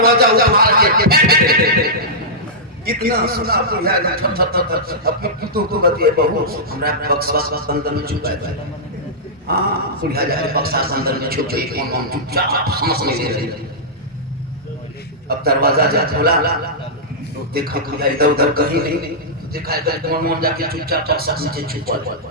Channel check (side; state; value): both; normal; correlation -0.13